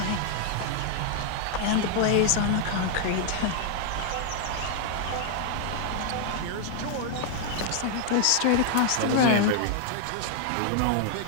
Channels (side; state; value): both; different; correlation 0.00